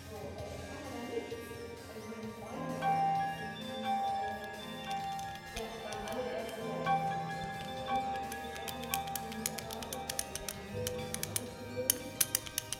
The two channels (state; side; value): identical; both; correlation 1.00